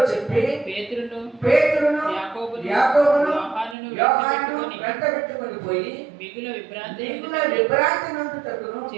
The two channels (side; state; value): left; drops out; at 3.8 s